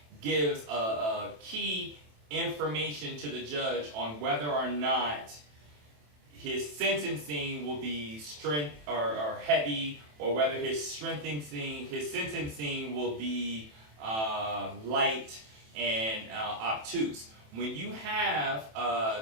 gives a key information to the judge on whether or not his sentencing will be heavy, or whether his sentencing will be light and obtuse. When you have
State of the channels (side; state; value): left; late; 27 ms